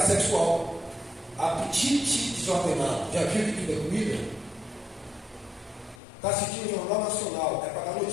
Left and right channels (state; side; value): drops out; right; at 6.0 s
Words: sexual, apetite desordenado. Já viu que tudo é comida? Está assistindo o Jornal Nacional, é para dar